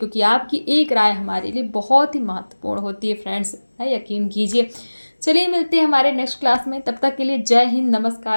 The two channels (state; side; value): inverted; both; correlation -1.00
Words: आपकी एक राय हमारे लिए बहुत ही महत्वपूर्ण होती है फ्रेंड्स, यकीन कीजिए। चलिए मिलते हैं हमारे नेक्स्ट क्लास में, तब तक के लिए जय हिंद,